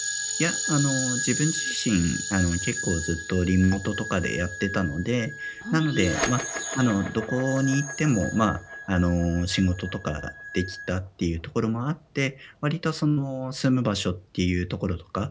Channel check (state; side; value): identical; both; correlation 1.00